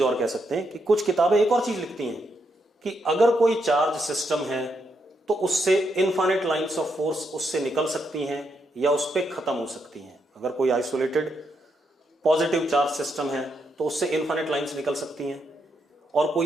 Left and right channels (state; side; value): normal; both; correlation 0.80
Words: और कह सकते हैं कि कुछ किताबें एक और चीज लिखती हैं कि अगर कोई चार्ज सिस्टम है तो उससे इनफाइनाइट लाइंस ऑफ फोर्स उससे निकल सकती हैं या उस पर खत्म हो सकती हैं। अगर कोई आइसोलेटेड पॉजिटिव चार्ज सिस्टम है तो उससे इनफाइनाइट लाइंस निकल सकती हैं, और